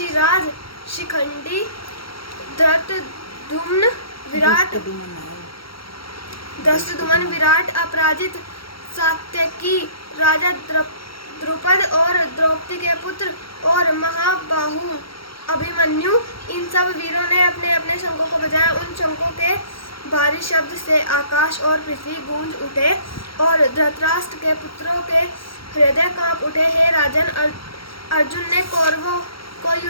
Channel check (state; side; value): late; right; 0.74 ms